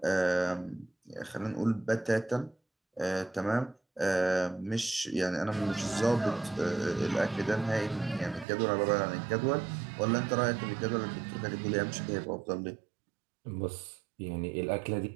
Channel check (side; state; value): left; drops out; at 8.5 s